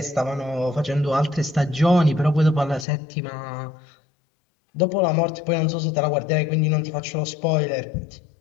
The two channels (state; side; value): drops out; right; at 2.9 s